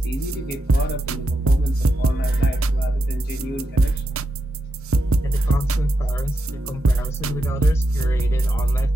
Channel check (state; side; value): normal; both; correlation 0.86